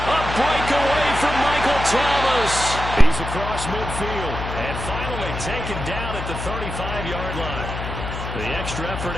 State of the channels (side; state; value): left; noise; hum, 6 dB below the sound